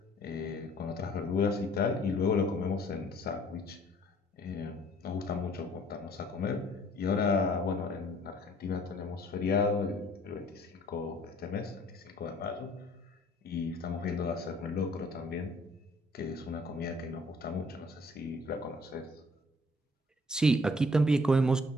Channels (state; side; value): normal; both; correlation 0.57